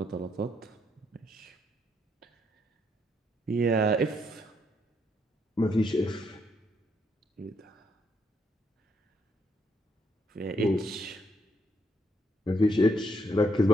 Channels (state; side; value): normal; both; correlation 0.74